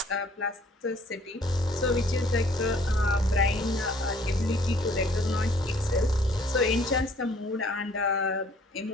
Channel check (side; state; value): both; normal; correlation 0.58